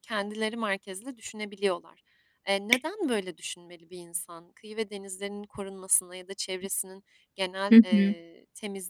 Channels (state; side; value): identical; both; correlation 1.00